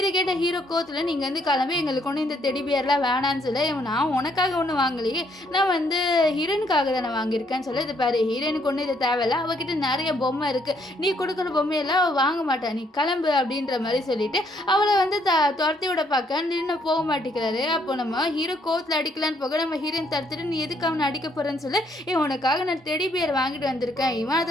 கேட்ட ஹீரோ கோத்தில் நீங்கள் வந்து கிளம்பி எங்களுக்கு ஒன்று இந்த டெடி பியர்லாம் வேணான்னு சொல்ல, நான் உனக்காக ஒன்று வாங்கலையே, நான் வந்து ஹீரோனுக்காக தான் நான் வாங்கியிருக்கேன்னு சொல்ல, இது பாரு ஹீரோனுக்கு ஒன்றும் இது தேவையில்ல, அவகிட்ட நிறைய பொம்மை இருக்குது, நீ கொடுக்குற பொம்மையெல்லாம் அவள் வாங்க மாட்டான், நீ கிளம்பு அப்படின்ற மாதிரி சொல்லிட்டு அவளை வந்து துரத்தி விட பார்க்க நின்று போக மாட்டேங்கிறாரு. அப்போ நம்ம ஹீரோ கோத்தில் அடிக்கலான்னு போக நம்ம ஹீரோயின் தடுத்துட்டு நீ எதுக்கு அவனை அடிக்க போகிறேன்னு சொல்ல, உனக்காக நான் டெடி பியர் வாங்கிட்டு வந்திருக்கேன், இவன்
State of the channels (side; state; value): both; normal; correlation 0.70